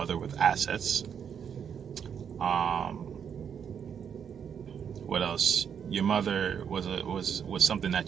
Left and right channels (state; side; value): quieter; left; 7.7 dB